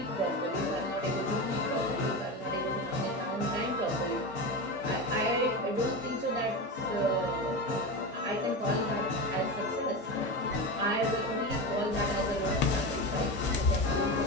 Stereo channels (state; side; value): normal; both; correlation 0.21